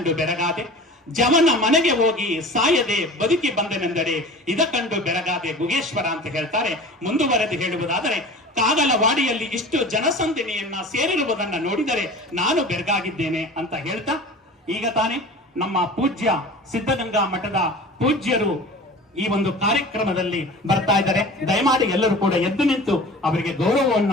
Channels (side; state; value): both; normal; correlation 0.38